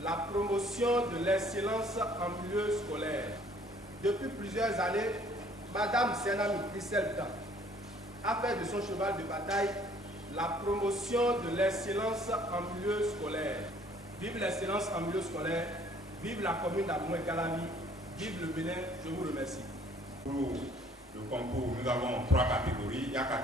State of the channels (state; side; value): normal; both; correlation 0.58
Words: la promotion de l'excellence en milieu scolaire. Depuis plusieurs années, Madame Senami Christelle Dan a fait de son cheval de bataille la promotion de l'excellence en milieu scolaire. Vive l'excellence en milieu scolaire, vive la commune d'Abomey-Calavi, vive le Bénin, je vous remercie. Pour le concours, nous avons 3 catégories. Il y a